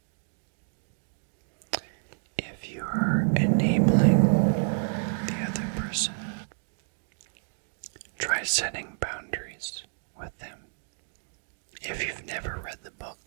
If you are enabling the other person, try setting boundaries with them. If you've never read the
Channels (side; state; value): left; silent; digital silence